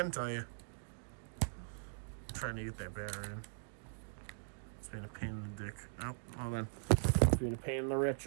tell you, I'm trying to get that battery in. It's being a pain in the dick. Oh, hold on. It's being a pain in the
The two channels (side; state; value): left; silent; digital silence